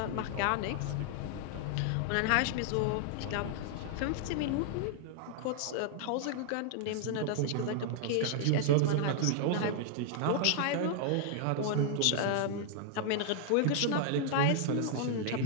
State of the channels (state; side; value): different; both; correlation 0.00